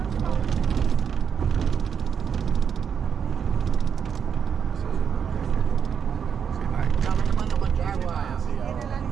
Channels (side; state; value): left; quieter; 7.3 dB